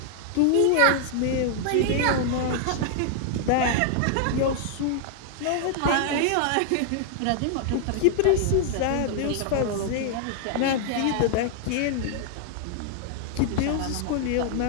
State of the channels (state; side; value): different; both; correlation 0.00